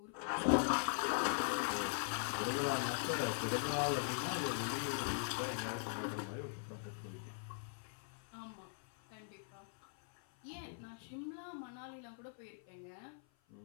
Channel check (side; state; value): right; silent; 50 dB below the other